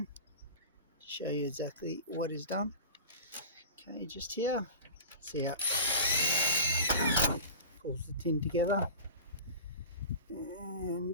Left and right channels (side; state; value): both; inverted; correlation -0.34